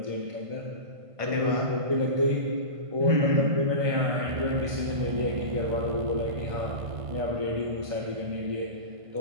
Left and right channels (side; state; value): left; late; 1.5 ms